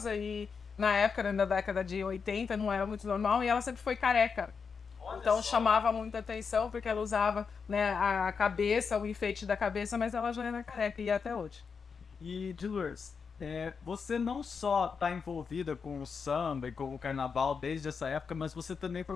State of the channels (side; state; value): right; quieter; 5.7 dB